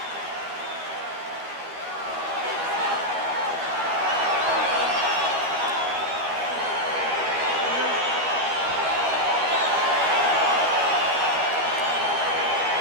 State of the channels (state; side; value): late; left; 12 ms